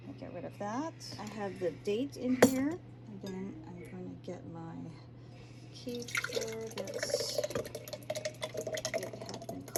I get rid of that. I have the date in here, and then I'm going to get my kefir that's it had been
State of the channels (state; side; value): identical; both; correlation 1.00